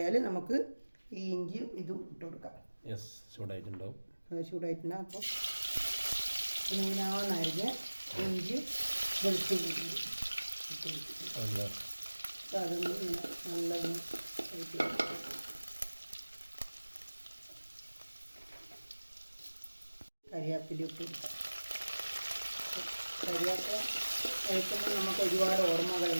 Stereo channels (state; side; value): inverted; both; correlation -1.00